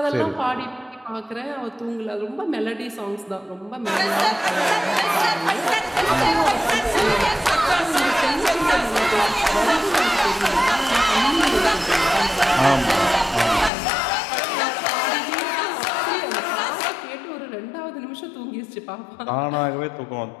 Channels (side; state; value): right; drops out; at 13.7 s